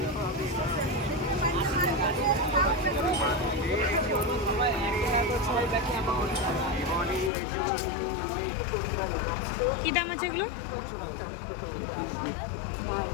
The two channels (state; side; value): drops out; right; at 7.3 s